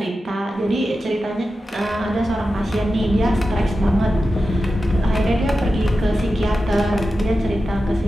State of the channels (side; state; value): both; normal; correlation 0.92